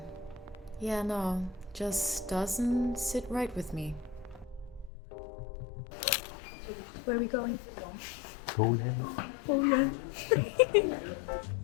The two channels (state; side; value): drops out; right; at 4.9 s